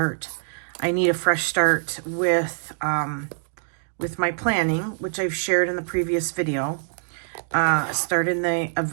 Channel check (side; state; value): left; silent; digital silence